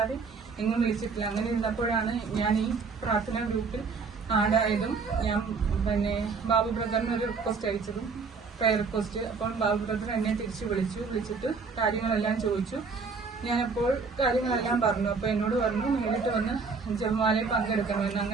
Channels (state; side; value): quieter; left; 4.8 dB